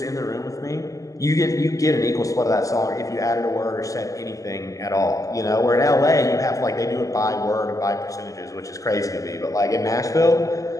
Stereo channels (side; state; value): right; late; 0.16 ms